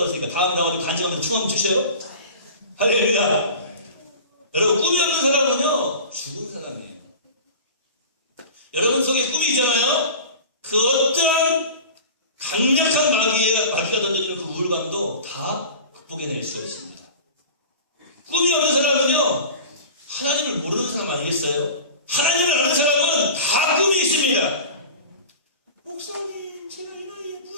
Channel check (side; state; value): both; inverted; correlation -0.37